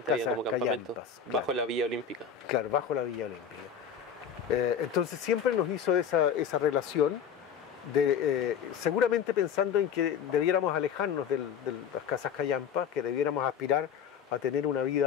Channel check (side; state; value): right; quieter; 7.6 dB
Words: había como campamentos, callampas, bajo claro. La Villa Olímpica. Claro, bajo la Villa Olímpica. Entonces siempre nos hizo esa relación, seguramente pensando en que debiéramos alejarnos de las casas callampas, que debiéramos aspirar a tener una